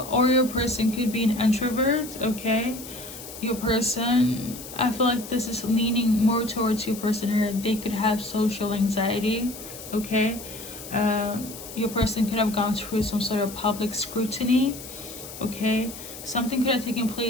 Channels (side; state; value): left; noise; hiss, 13 dB below the sound